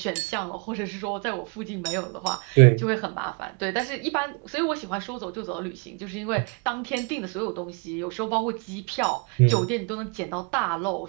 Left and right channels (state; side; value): quieter; left; 32.7 dB